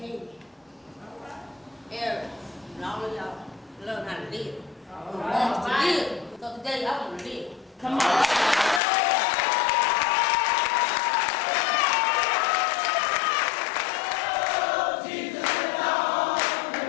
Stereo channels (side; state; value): right; drops out; at 8.8 s